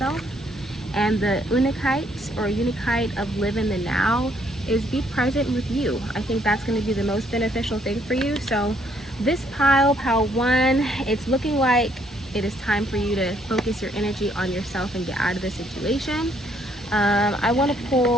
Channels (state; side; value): normal; both; correlation 0.68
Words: And the unikite or unikite of live in the now is be present with you. I think that's going to be the most beneficial thing for you. So this pile 1, it's looking like it is time for you to focus your energy on yourself and get out of the situation. I want to